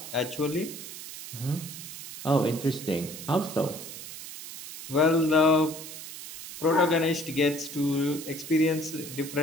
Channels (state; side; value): noise; right; hiss, 11 dB below the sound